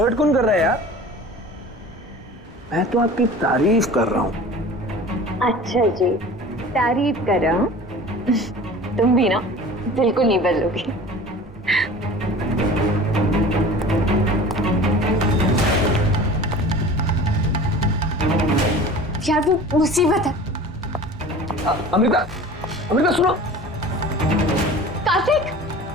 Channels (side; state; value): both; normal; correlation 0.40